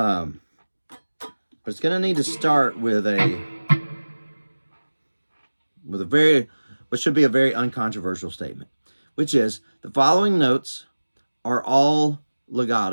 it's gonna need to start with what should be a very uncontroversial statement, which is the following notes are all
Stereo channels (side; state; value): both; inverted; correlation -1.00